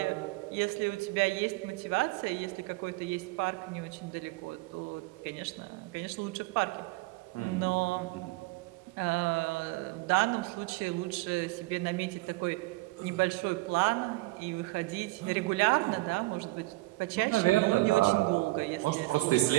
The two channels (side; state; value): left; quieter; 21.3 dB